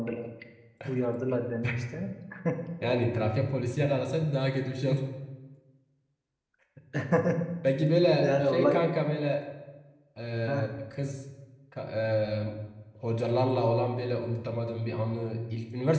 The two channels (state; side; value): identical; both; correlation 1.00